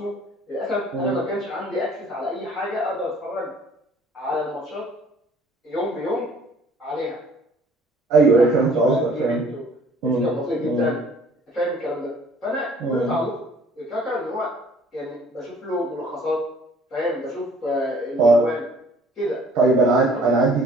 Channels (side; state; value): both; normal; correlation 0.55